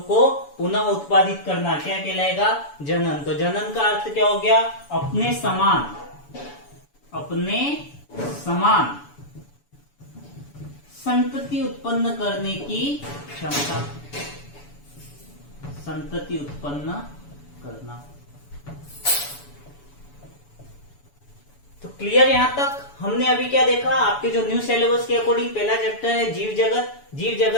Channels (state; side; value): late; right; 7.0 ms